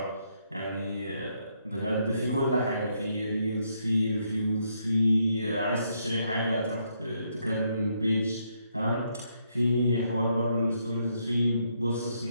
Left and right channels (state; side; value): inverted; both; correlation -0.75